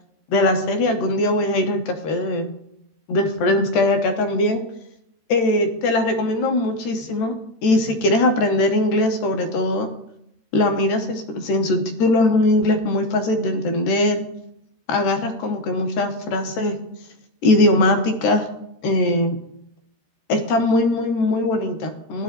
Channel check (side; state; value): right; late; 13 ms